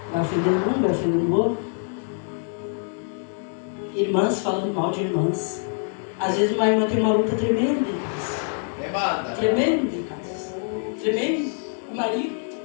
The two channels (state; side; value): silent; right; 56 dB below the other